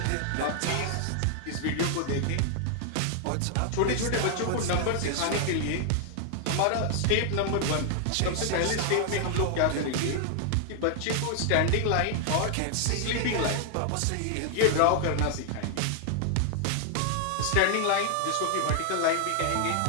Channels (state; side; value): different; both; correlation 0.00